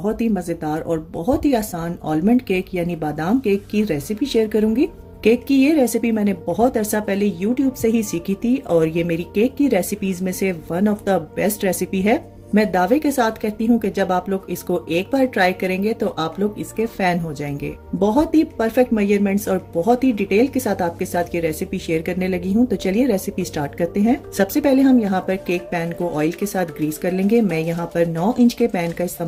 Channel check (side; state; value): both; identical; correlation 1.00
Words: ही मज़ेदार और बहुत ही आसान आलमंड केक यानी बादाम केक की रेसिपी शेयर करूंगी। केक की ये रेसिपी मैंने बहुत अरसा पहले YouTube से ही सीखी थी और ये मेरी केक की रेसिपीज में से one of the best recipe है। मैं दावे के साथ कहती हूँ कि जब आप लोग इसको एक बार ट्राई करेंगे तो आप लोग इसके फैन हो जाएंगे। बहुत ही परफेक्ट मेजरमेंट्स और बहुत ही डिटेल के साथ आपके साथ ये रेसिपी शेयर करने लगी हूँ। तो चलिए रेसिपी स्टार्ट करते हैं। सबसे पहले हम यहाँ पर केक पैन को ऑयल के साथ ग्रीस कर लेंगे। मैं यहाँ पर 9 इंच के पैन का